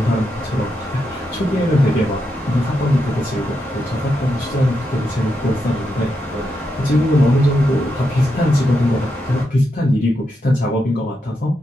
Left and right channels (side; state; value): both; normal; correlation 0.84